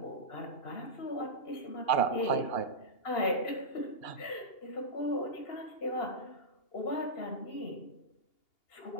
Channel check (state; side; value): late; right; 2.8 ms